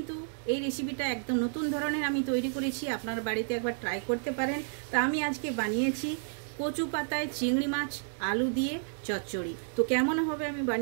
এই রেসিপিটা একদম নতুন ধরনের আমি তৈরি করেছি। আপনার বাড়িতে একবার ট্রাই করতে পারেন। তা আমি আজকে বানিয়েছি কচু পাতায় চিংড়ি মাছ আলু দিয়ে চচ্চড়ি। তো কেমন হবে আমি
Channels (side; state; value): left; silent; digital silence